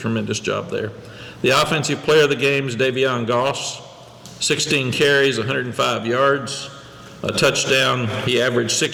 job there. The offensive player of the game is Davion Goss, 16 carries, 105 yards. A touchdown. He averaged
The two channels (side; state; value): both; identical; correlation 1.00